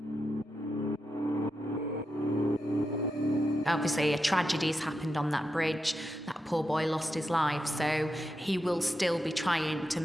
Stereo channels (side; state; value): both; normal; correlation 0.87